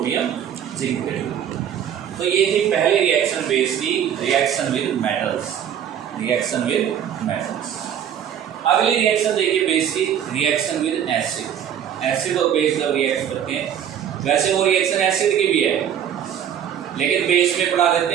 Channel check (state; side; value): quieter; left; 9.3 dB